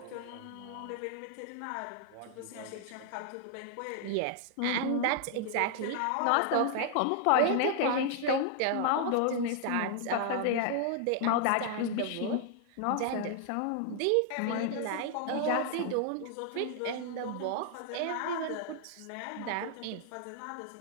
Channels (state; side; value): different; both; correlation 0.00